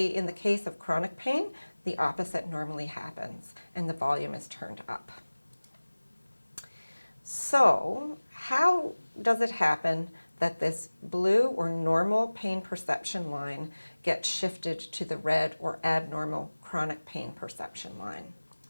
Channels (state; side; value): inverted; both; correlation -1.00